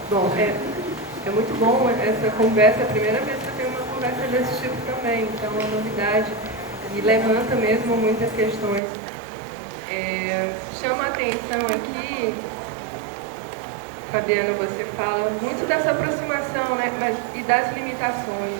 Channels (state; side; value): drops out; left; at 8.8 s